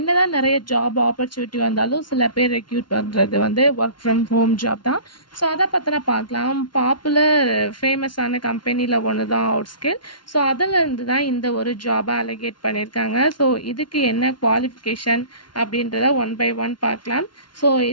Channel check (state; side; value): late; right; 0.71 ms